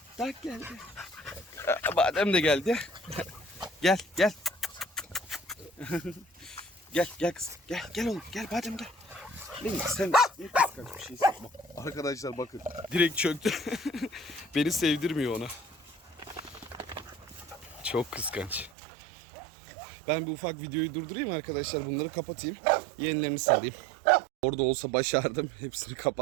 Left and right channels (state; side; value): drops out; left; at 18.7 s